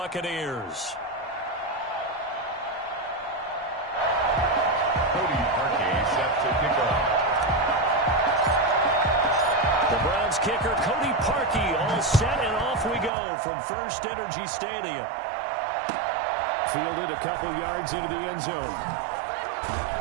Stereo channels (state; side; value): drops out; left; at 13.1 s